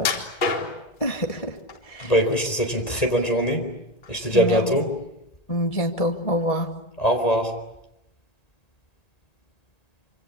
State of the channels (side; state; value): right; late; 1.9 ms